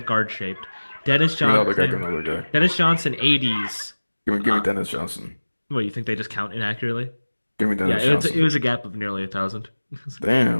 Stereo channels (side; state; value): both; inverted; correlation -1.00